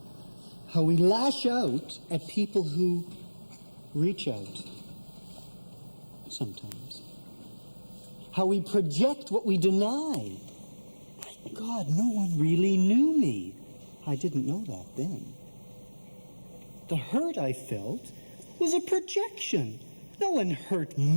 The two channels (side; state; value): both; inverted; correlation -1.00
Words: How we lash out at people who reach out sometimes. How we project what we deny. My God, no one really knew me. I didn't know that then. The hurt I felt was a projection. No one hurt